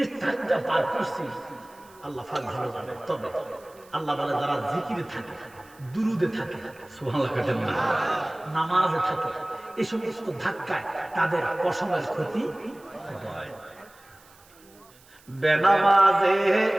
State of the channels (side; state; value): right; noise; hiss, 27 dB below the sound